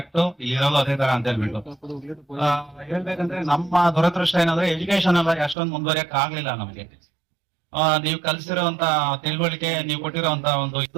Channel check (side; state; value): left; drops out; at 5.6 s